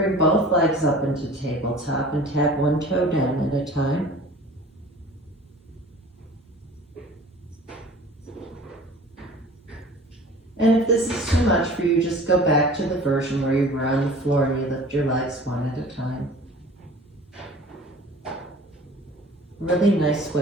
both legs up into tabletop and tap one toe down at a time. And if this is too much for you, just go back to the version where you were on the floor and you lift your legs one at a time. Really nice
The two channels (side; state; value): both; normal; correlation 0.44